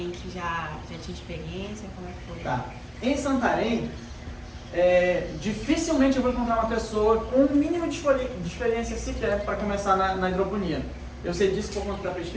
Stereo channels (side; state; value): both; identical; correlation 1.00